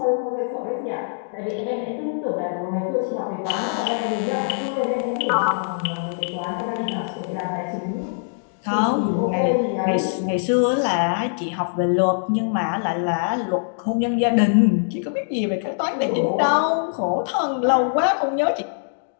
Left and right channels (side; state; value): right; silent; digital silence